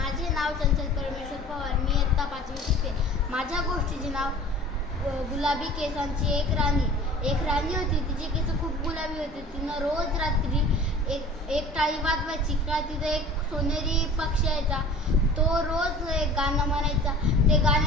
नाव चंचल परमेश्वर पवार. मी इयत्ता 5वी शिकते. माझ्या गोष्टीचे नाव गुलाबी केसांची एक राणी होती. तिचे केस खूप गुलाबी होते. तिनं रोज रात्री एक टाळी वाजवायची का तिथं एक सोनेरी पक्षी यायचा. तो रोज एक गाणं म्हणायचा. ते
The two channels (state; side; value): normal; both; correlation 0.43